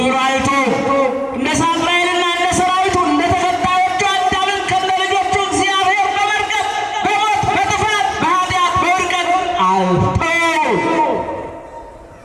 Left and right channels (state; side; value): identical; both; correlation 1.00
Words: አይቶ እንደ ሳጥናኤልና እንደ ሰራዊቱ እንደ ተከታዮቹ አዳምን ከነ ልጆቹ እግዚአብሔር በመርገም በሞት በጥፋት በኃጢአት በውድቀት